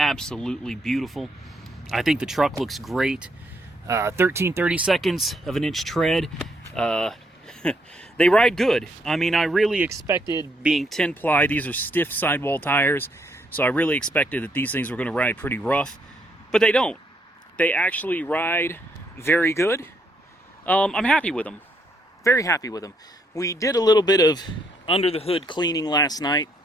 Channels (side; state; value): both; normal; correlation 0.73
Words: beautiful. I think the truck looks great. 13-30 seconds of an inch tread. They ride good. I mean, I really expected, being 10-ply, these are stiff sidewall tires, so I really expected that these things were going to ride pretty rough, but they don't. They actually ride very good. I'm happy with them. Very happy with them. We did a little bit of under the hood cleaning last night